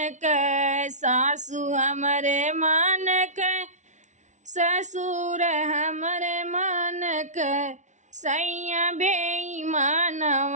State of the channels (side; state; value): left; late; 0.35 ms